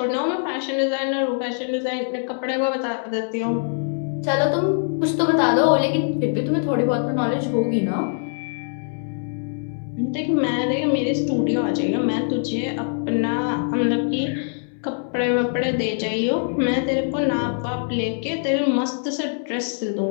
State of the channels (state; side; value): silent; right; 63 dB below the other